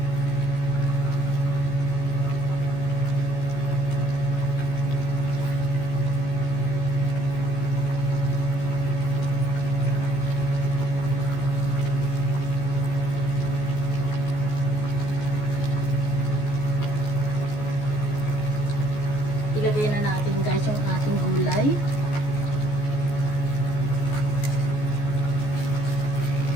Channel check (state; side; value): late; right; 14 ms